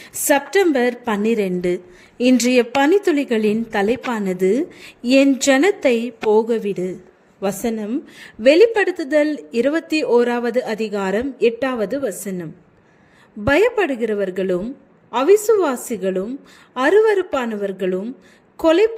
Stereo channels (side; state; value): both; identical; correlation 1.00